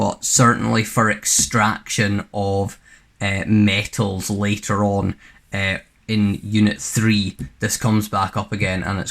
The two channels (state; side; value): identical; both; correlation 1.00